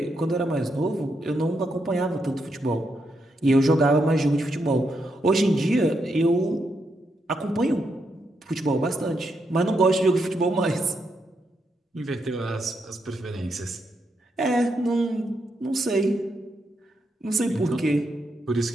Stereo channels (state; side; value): normal; both; correlation 0.81